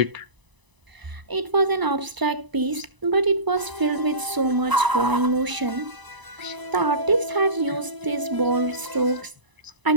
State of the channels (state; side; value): late; left; 1.0 ms